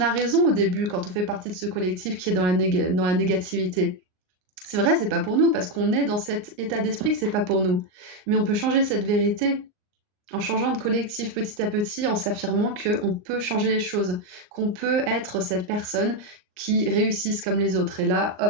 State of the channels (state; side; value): late; left; 38 ms